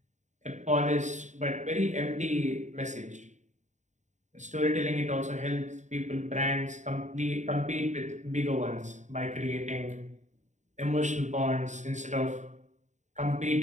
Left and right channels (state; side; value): late; left; 0.34 ms